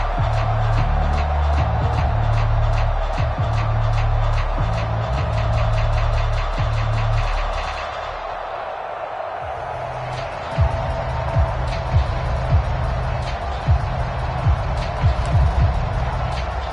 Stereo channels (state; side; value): identical; both; correlation 1.00